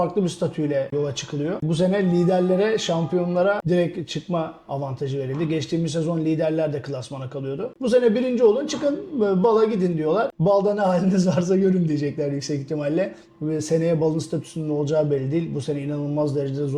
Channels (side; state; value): both; identical; correlation 1.00